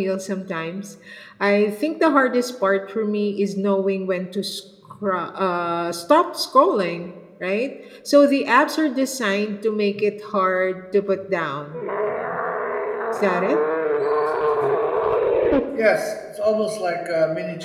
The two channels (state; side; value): identical; both; correlation 1.00